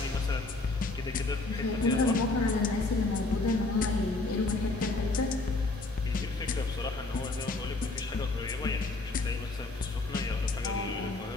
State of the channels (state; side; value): quieter; right; 3.2 dB